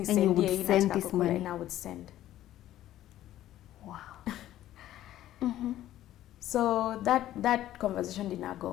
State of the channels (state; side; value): quieter; right; 13.3 dB